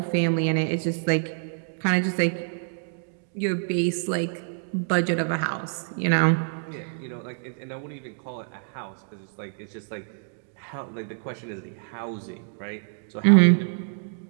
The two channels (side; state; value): left; silent; digital silence